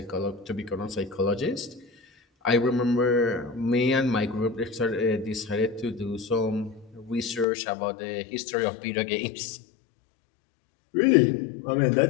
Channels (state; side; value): drops out; right; at 7.5 s